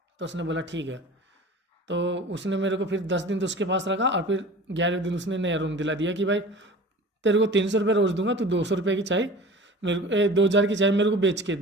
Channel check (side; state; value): both; normal; correlation 0.40